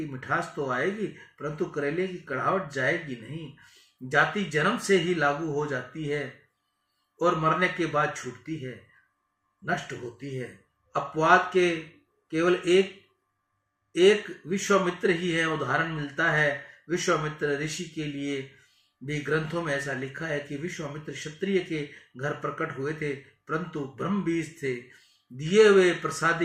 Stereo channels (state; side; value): identical; both; correlation 1.00